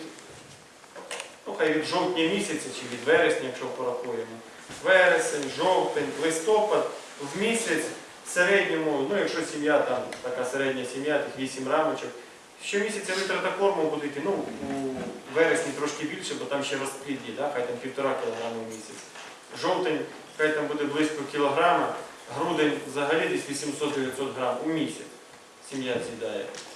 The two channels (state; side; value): identical; both; correlation 1.00